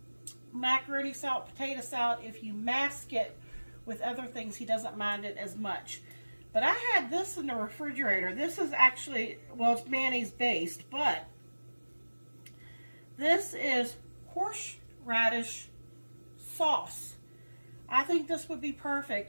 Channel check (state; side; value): inverted; both; correlation -1.00